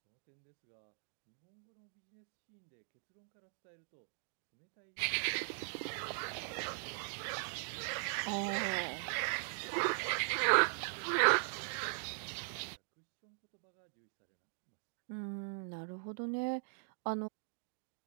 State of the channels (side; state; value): left; silent; digital silence